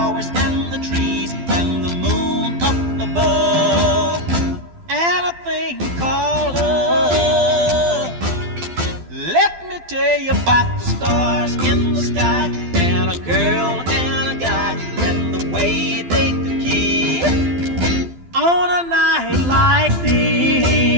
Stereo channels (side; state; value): left; late; 12 ms